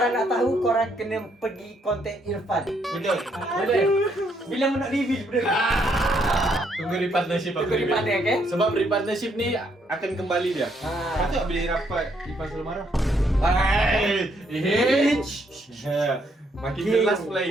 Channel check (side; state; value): both; normal; correlation 0.72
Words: nak tahu, korang kena pergi konten Irfan. Betul. Boleh? Bila nak reveal benda ni? Tunggu repartnership aku. Tunggu repartner, okay? Sebab repartnership ni akan kembali dia. Ha. Patut bila rapat Ipan selalu marah. Makin jelas pula